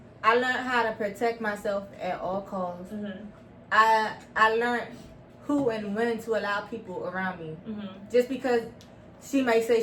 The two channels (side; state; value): both; identical; correlation 1.00